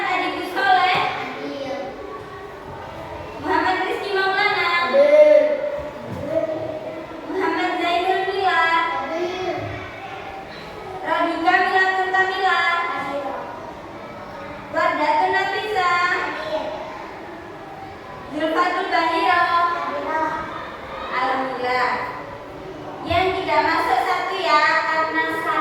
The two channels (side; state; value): both; identical; correlation 1.00